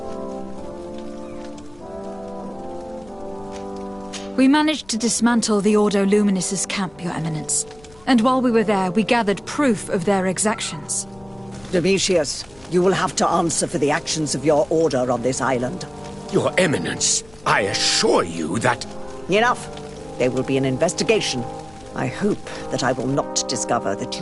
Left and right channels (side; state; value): left; noise; rumble, 25 dB below the sound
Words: We managed to dismantle the Ordo Luminis's camp, Your Eminence. And while we were there, we gathered proof of their exactions. Domitius, you will have to answer for the actions of your order on this island. Your Eminence, I assure you that... Enough. There will be an investigation. I hope that I will not discover that